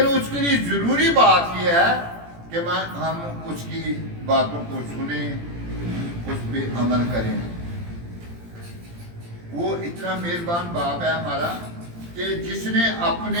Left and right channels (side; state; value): left; late; 17 ms